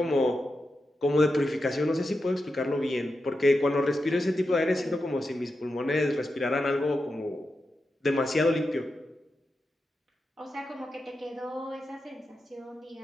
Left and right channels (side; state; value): both; normal; correlation 0.89